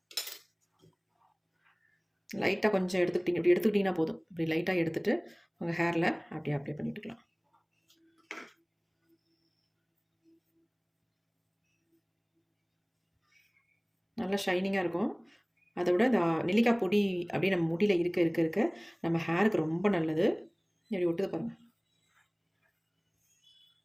லைட்டாக கொஞ்சம் இப்படி எடுத்துக்கிட்டிங்கன்னா போதும். இப்படி லைட்டாக எடுத்துகிட்டு உங்கள் ஹேரில் அப்படியே அப்ளை பண்ணிட்டுக்கலாம். நல்லா ஷைனிங்காக இருக்கும். அதை விட இந்த நெல்லிக்காய் பொடி அப்படியே நம்ம முடியில் இருக்க நம்ம ஹேருக்கு ரொம்ப நல்லது. இப்படி ஒட்டுது பாருங்கள்.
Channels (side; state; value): both; identical; correlation 1.00